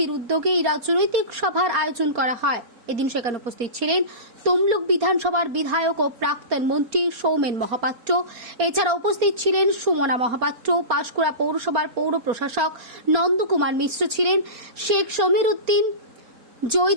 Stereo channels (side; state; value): left; late; 4.3 ms